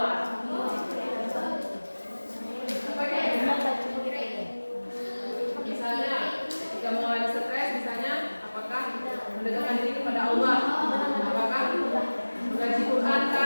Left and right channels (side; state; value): both; inverted; correlation -1.00